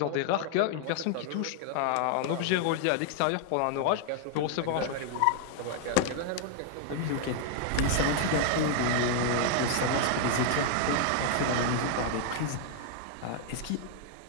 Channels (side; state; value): both; different; correlation 0.00